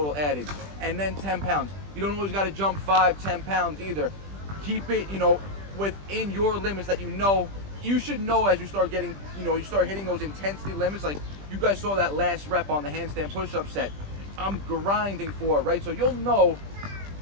added, and then 10 pounds. You don't always gotta jump 5, 10 pounds either. Keep it, you know, within your limits that you know. You should know as you start getting, you know, you start hitting those intensity limits. Like you guys saw that last rep on the handstand push-up set. I'm grinding for it, right? So you'll know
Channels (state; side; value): late; left; 20 ms